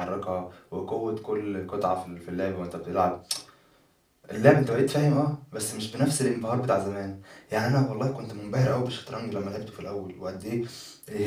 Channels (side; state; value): both; identical; correlation 1.00